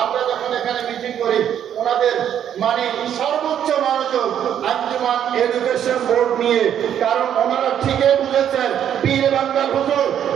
আমরা যখন এখানে মিটিং করি, ওনাদের মানে সর্বোচ্চ মনোযোগ আঞ্জুমান এডুকেশন বোর্ড নিয়ে, কারণ ওনারা ঠিকই বুঝেছেন পীর বাংলার হুজুর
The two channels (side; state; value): left; quieter; 9.7 dB